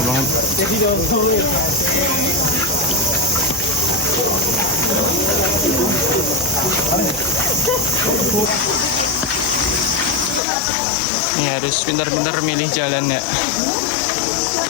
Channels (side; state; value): right; drops out; at 10.4 s